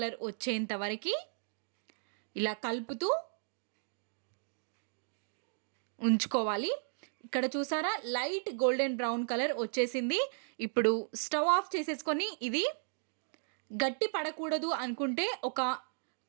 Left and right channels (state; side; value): silent; left; digital silence